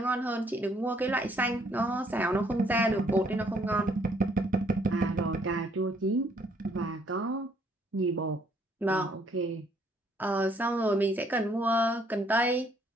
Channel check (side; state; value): both; normal; correlation 0.66